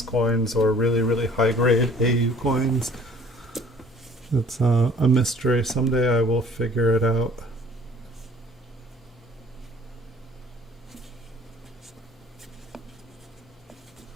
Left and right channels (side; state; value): both; normal; correlation 0.53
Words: coins or really high grade AU coins. It's a mystery. Someday I will figure it out.